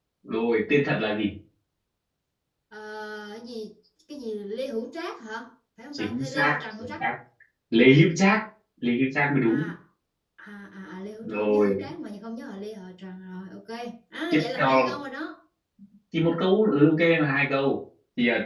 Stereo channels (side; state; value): both; identical; correlation 1.00